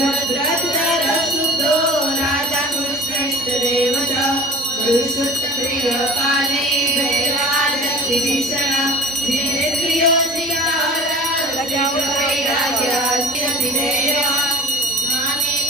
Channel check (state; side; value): normal; both; correlation 0.39